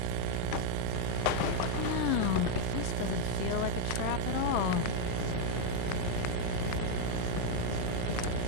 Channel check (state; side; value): different; both; correlation 0.00